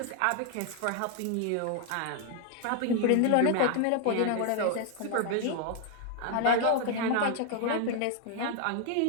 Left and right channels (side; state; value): both; different; correlation 0.00